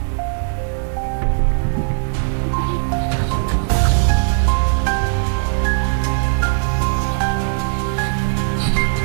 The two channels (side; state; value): left; silent; digital silence